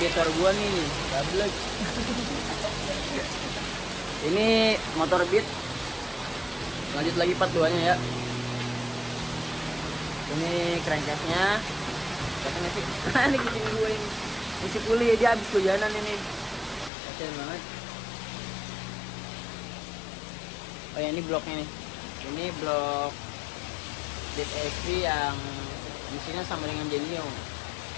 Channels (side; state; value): right; drops out; at 16.9 s